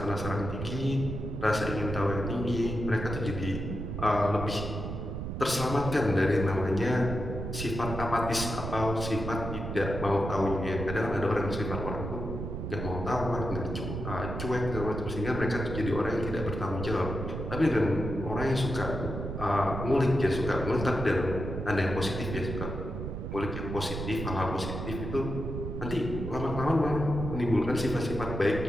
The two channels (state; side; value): noise; right; rumble, 5 dB below the sound